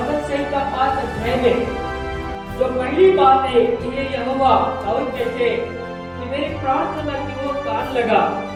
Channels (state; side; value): identical; both; correlation 1.00